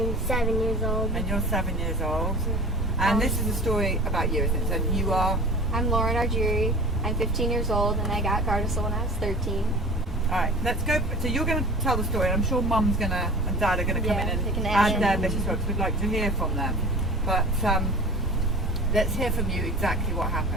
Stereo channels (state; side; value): normal; both; correlation 0.40